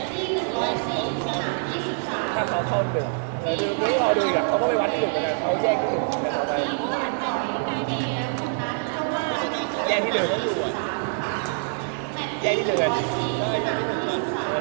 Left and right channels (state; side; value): silent; left; 62 dB below the other